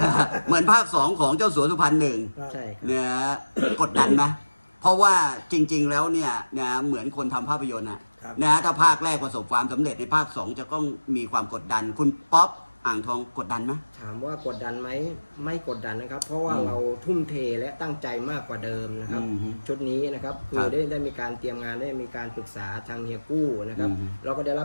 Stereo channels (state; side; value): inverted; both; correlation -1.00